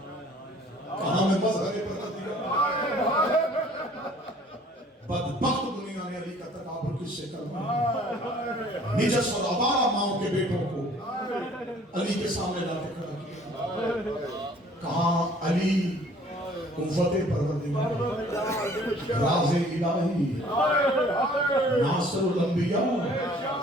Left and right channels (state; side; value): normal; both; correlation 0.55